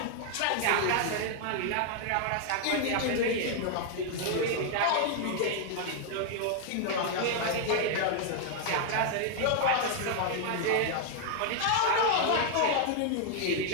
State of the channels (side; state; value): both; different; correlation 0.00